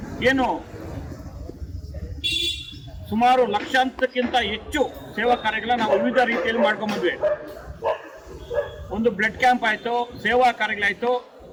ಏನು ಸುಮಾರು ಲಕ್ಷಾಂತಕ್ಕಿಂತ ಹೆಚ್ಚು ಸೇವಾ ಕಾರ್ಯಗಳನ್ನ ನಾವು ವಿವಿಧ ರೀತಿಯಲ್ಲಿ ಮಾಡ್ಕೊಂಡ್ಬಂದ್ವಿ. ಒಂದು ಬ್ಲಡ್ ಕ್ಯಾಂಪ್ ಆಯಿತು, ಸೇವಾ ಕಾರ್ಯಗಳಾಯಿತು,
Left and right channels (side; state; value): both; identical; correlation 1.00